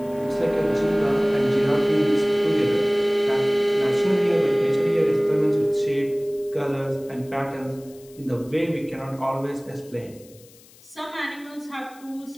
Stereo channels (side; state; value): left; noise; hiss, 25 dB below the sound